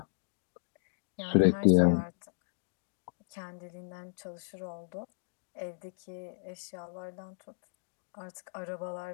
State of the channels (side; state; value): right; silent; digital silence